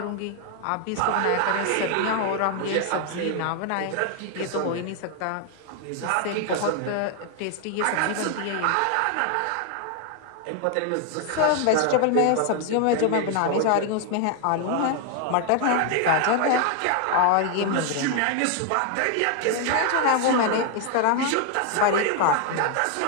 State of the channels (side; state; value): both; different; correlation 0.00